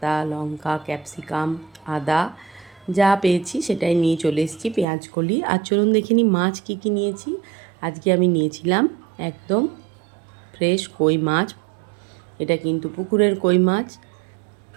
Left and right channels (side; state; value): left; drops out; at 4.9 s